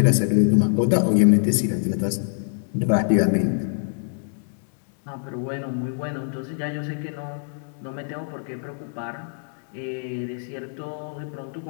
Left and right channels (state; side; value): silent; right; digital silence